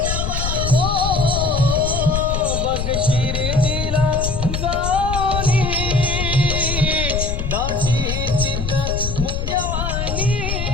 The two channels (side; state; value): left; noise; rumble, 3 dB below the sound